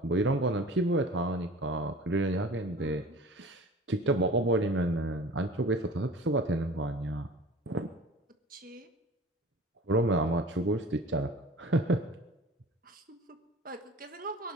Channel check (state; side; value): normal; both; correlation 0.41